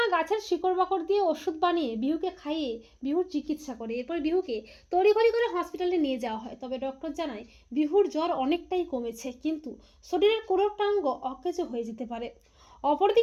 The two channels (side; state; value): both; identical; correlation 1.00